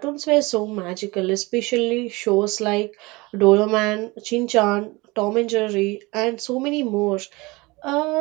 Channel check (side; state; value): left; quieter; 23.5 dB